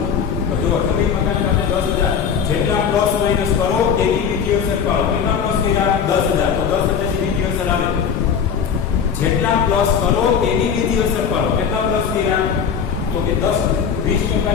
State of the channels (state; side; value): quieter; right; 7.2 dB